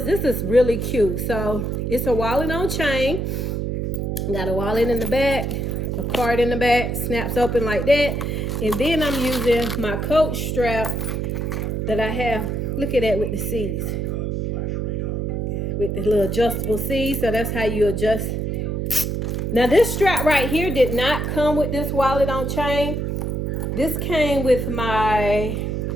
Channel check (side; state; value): right; noise; hum, 1 dB below the sound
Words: is really cute. So it's a wallet on chain. Got a wallet in the back, a card in the back, snaps open like that. And then I'm using my Coach strap that I have. Look at that with the C's. With the little adjustable C's. So that's how you adjust. Now this strap right here did not come with this wallet on chain. This came with my